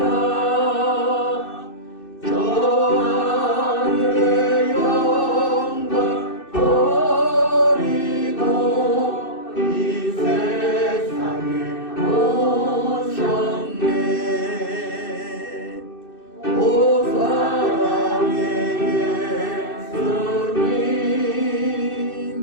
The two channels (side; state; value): right; late; 2.6 ms